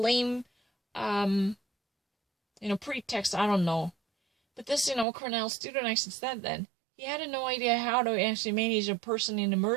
pretext, I don't know. But this, Cornell student actually said that he had no idea how to actually manage a person in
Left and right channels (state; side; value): drops out; left; at 5.1 s